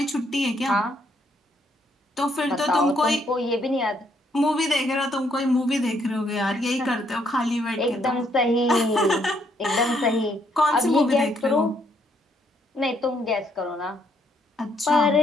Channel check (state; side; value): normal; both; correlation 0.71